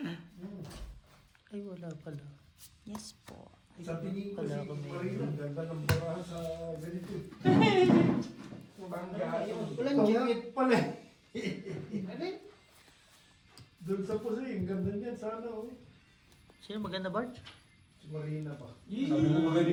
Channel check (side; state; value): both; identical; correlation 1.00